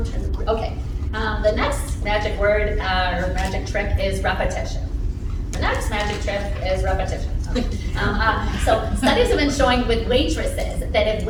Okay, the next magic word or magic trick is repetition. The next magic trick is repetition. So studies have been showing with waitresses that if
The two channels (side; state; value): both; identical; correlation 1.00